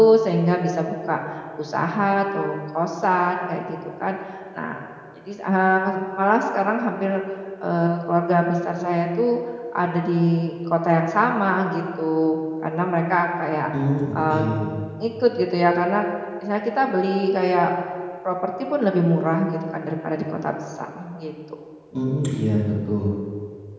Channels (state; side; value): identical; both; correlation 1.00